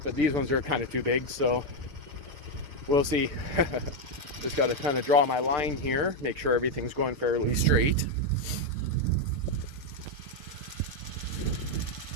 but these ones are kind of too big, so we'll see. Just got to kind of draw my line here, make sure everything's going fairly straight.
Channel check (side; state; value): left; late; 6.8 ms